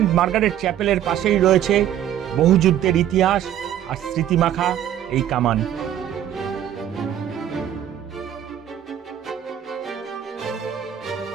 মার্গারেট চ্যাপেলের পাশেই রয়েছে বহু যুদ্ধের ইতিহাস আর স্মৃতিমাখা এই কামান।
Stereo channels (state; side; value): quieter; left; 10.8 dB